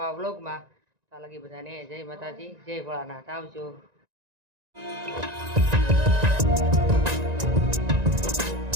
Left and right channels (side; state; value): left; late; 1.9 ms